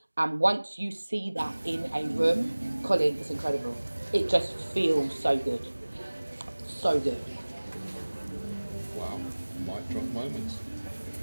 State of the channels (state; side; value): inverted; both; correlation -1.00